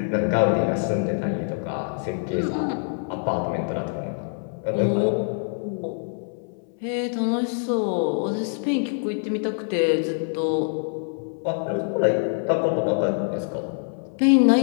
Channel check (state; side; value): silent; right; 62 dB below the other